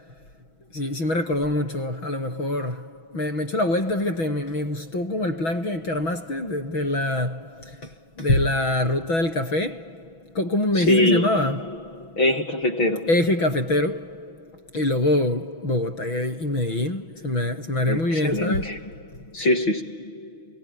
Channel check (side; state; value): right; late; 6.1 ms